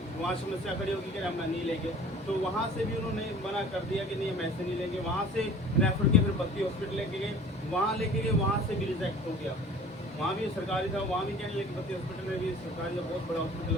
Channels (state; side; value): normal; both; correlation 0.46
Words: वहाँ समस्या खड़ी होगी कि हम नहीं लेंगे, तो वहाँ से भी उन्होंने मना कर दिया कि नहीं हम ऐसे नहीं लेंगे। वहाँ से रेफर के फिर बत्ती हॉस्पिटल लेके गए, वहाँ लेके गए, वहाँ से भी रिजेक्ट हो गया। वहाँ भी सरकारी था, वहाँ भी कहने लगे, बत्ती हॉस्पिटल में भी सरकारी का बहुत बड़ा हॉस्पिटल